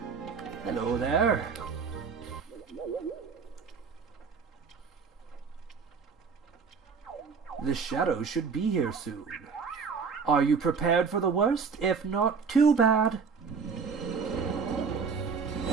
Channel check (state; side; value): quieter; left; 5.5 dB